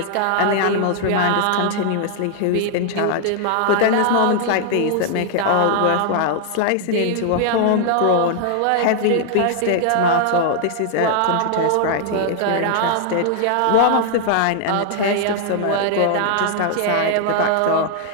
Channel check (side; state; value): both; different; correlation 0.00